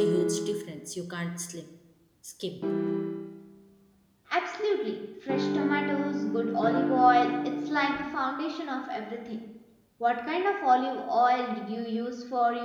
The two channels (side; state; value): both; identical; correlation 1.00